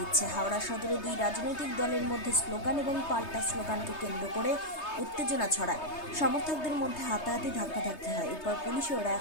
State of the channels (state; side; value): late; right; 3.2 ms